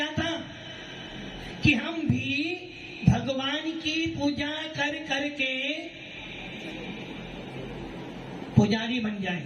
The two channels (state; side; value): identical; both; correlation 1.00